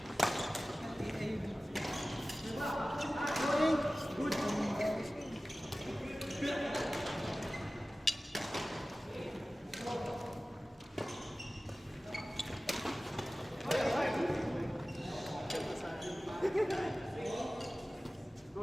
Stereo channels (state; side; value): normal; both; correlation 0.97